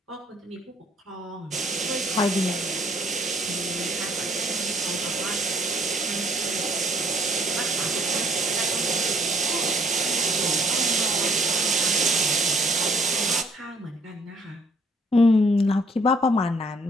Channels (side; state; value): both; normal; correlation 0.63